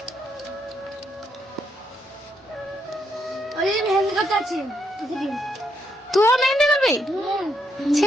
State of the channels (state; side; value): normal; both; correlation 0.77